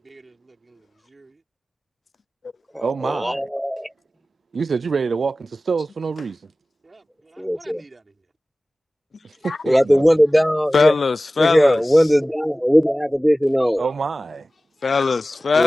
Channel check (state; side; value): normal; both; correlation 0.97